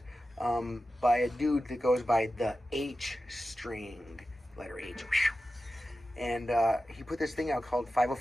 by a dude that goes by the H string, letter H. And he put this thing out called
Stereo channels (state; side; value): normal; both; correlation 0.93